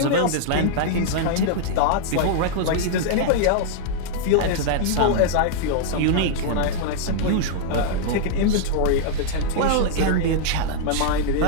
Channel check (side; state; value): both; different; correlation -0.01